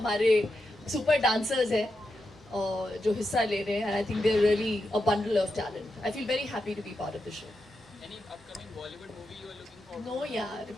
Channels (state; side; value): normal; both; correlation 0.87